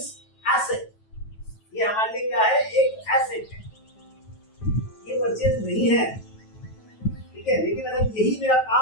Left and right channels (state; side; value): late; right; 9.2 ms